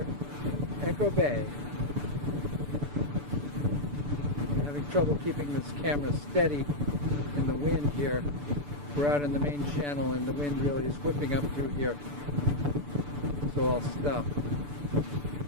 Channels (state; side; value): late; left; 6.9 ms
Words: Echo Bay. I'm having trouble keeping this camera steady in the wind here. We're out in the main channel and the wind really is whipping up through here. So I'll stop.